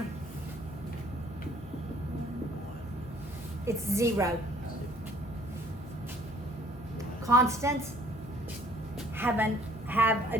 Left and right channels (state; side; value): normal; both; correlation 0.58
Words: It's 0. Constants have a